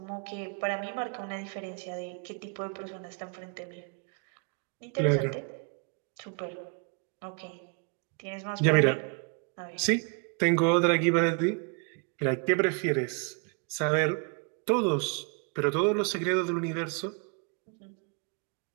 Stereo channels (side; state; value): left; quieter; 37.5 dB